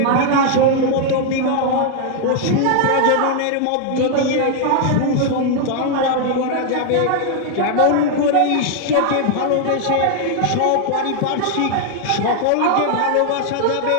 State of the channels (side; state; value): both; different; correlation 0.00